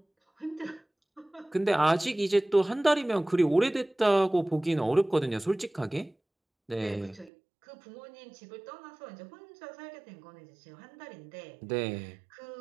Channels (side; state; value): left; drops out; at 7.3 s